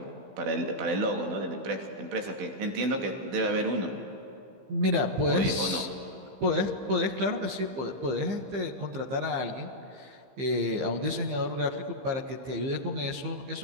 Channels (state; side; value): late; left; 15 ms